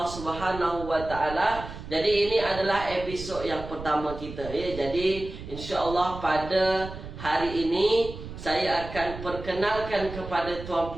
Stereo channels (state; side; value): noise; right; rumble, 11 dB below the sound